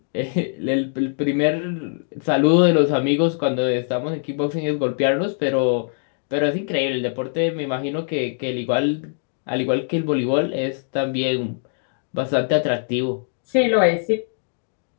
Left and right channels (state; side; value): silent; right; 64 dB below the other